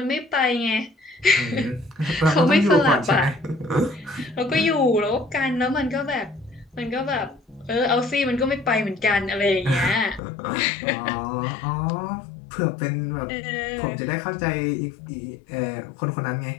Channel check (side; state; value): right; drops out; at 10.2 s